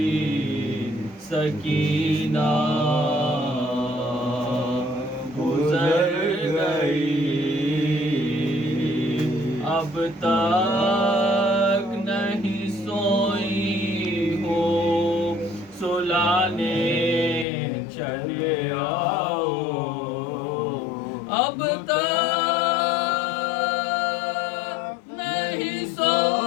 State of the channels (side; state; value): right; drops out; at 17.4 s